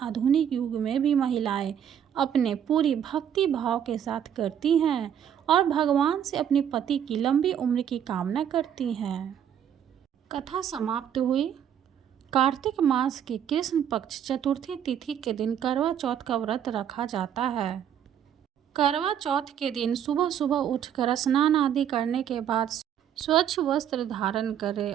युग में भी महिलाएं अपने पूरी भक्ति भाव के साथ करती हैं और भगवान से अपने पति की लंबी उम्र की कामना करती हैं। कथा समाप्त हुई। कार्तिक मास की कृष्ण पक्ष चतुर्थी तिथि के दिन करवा चौथ का व्रत रखा जाता है। करवा चौथ के दिन सुबह सुबह उठकर स्नान आदि करने के बाद स्वच्छ वस्त्र धारण करें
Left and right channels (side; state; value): left; quieter; 9.3 dB